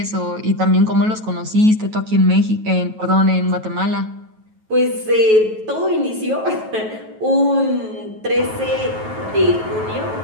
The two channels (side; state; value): left; late; 9.2 ms